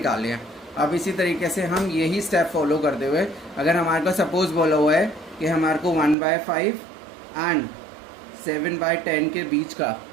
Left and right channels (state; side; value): drops out; left; at 6.2 s